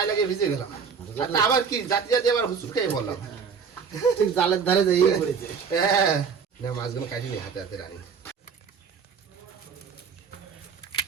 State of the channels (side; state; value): left; quieter; 6.1 dB